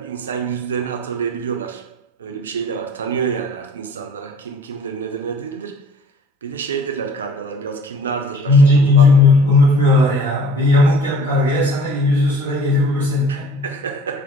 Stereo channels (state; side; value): normal; both; correlation 0.49